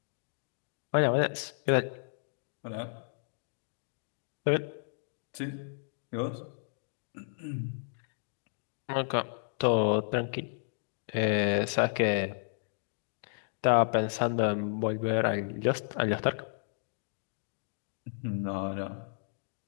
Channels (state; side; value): silent; right; digital silence